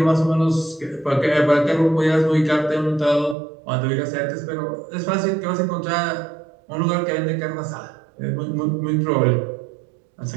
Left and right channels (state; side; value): drops out; left; at 3.4 s